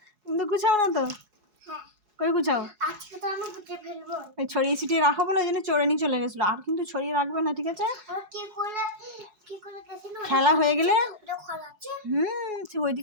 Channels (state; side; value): late; left; 4.7 ms